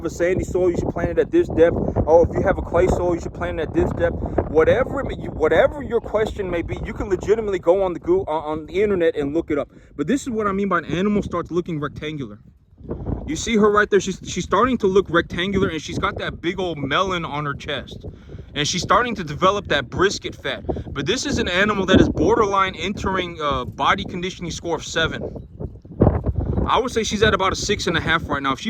a sandy soil, you should plant it at this depth. Oh, if you have a clay soil, you should plant it at this depth. Whatever your question may be, you can legitimately go on the internet and look it up. But this is what I mean by an animal starts looking rectangular. You see her right there, she's starting to look rectangular, and she's got that big old melon on her chest. And she's starting to develop that brisket fat. But this is an animal that is borderline entering body conditioning score of 7. I would say she's at about a 6.5 right now. If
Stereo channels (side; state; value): both; identical; correlation 1.00